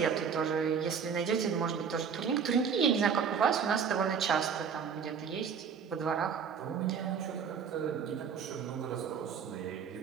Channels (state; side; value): quieter; left; 6.7 dB